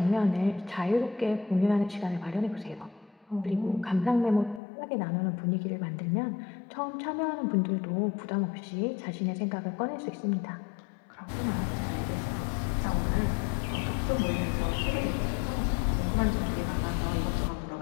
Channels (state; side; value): drops out; right; at 4.6 s